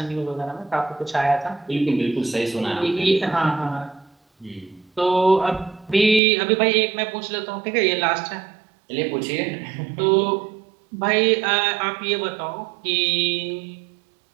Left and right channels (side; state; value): left; drops out; at 6.2 s